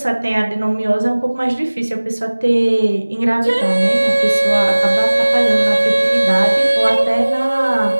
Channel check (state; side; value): inverted; both; correlation -1.00